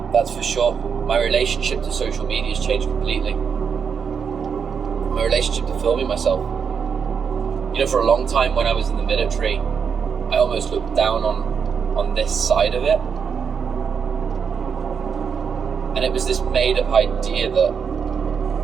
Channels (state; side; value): quieter; left; 6.6 dB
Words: that's for sure. My relationship to social media has changed completely. My relationship to filming myself. You know, for a long time when I was in the military, I almost looked down on this side of it. And it was this made up idea that